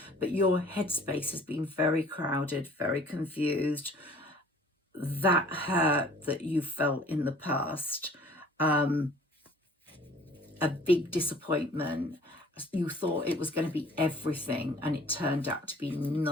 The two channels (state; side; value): normal; both; correlation 0.51